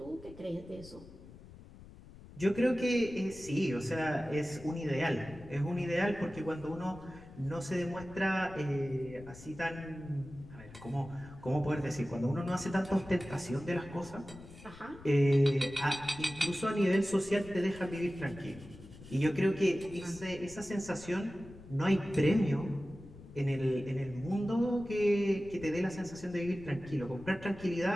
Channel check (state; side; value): noise; left; rumble, 18 dB below the sound